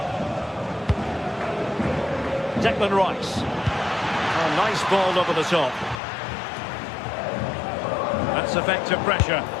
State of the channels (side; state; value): right; drops out; at 6.0 s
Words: Declan Rice. Oh, nice ball over the top. That's effective pressure,